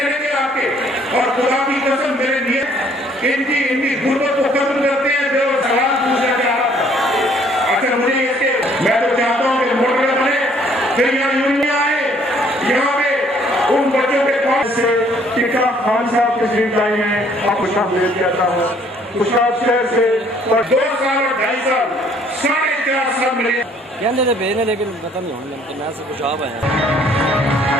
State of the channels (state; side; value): normal; both; correlation 0.61